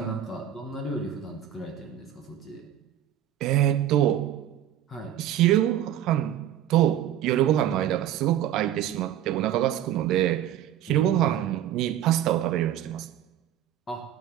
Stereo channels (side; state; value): left; quieter; 11.3 dB